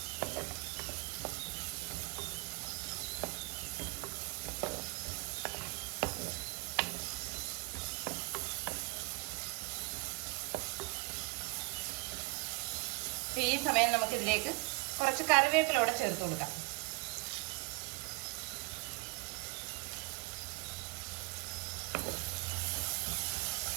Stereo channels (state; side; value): quieter; left; 29.2 dB